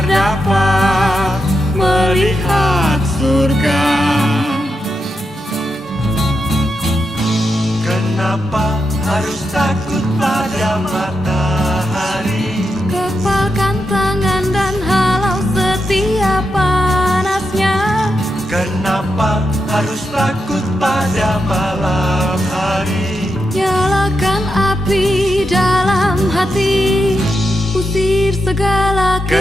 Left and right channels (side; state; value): both; normal; correlation 0.86